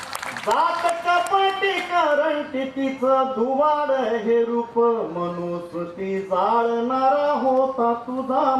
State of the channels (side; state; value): both; identical; correlation 1.00